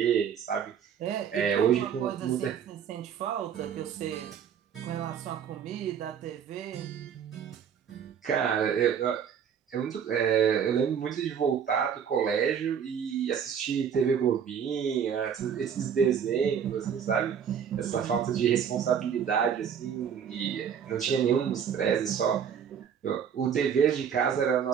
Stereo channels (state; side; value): quieter; left; 7.9 dB